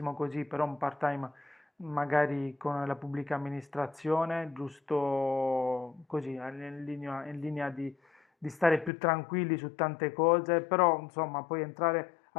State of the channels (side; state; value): right; drops out; at 8.9 s